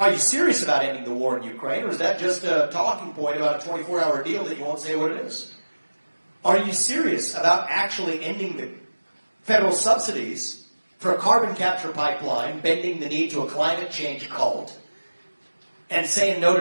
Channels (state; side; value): inverted; both; correlation -1.00